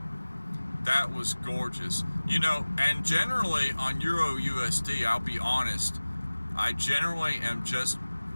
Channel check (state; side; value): inverted; both; correlation -1.00